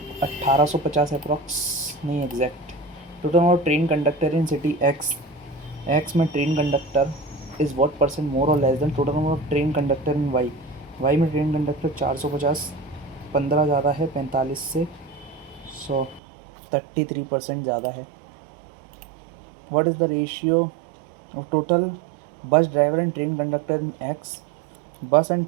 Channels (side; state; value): left; drops out; at 16.2 s